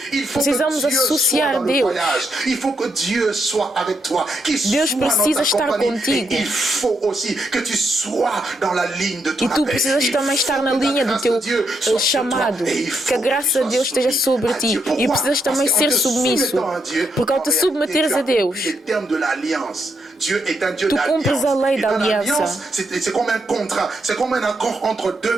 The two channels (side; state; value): both; normal; correlation 0.79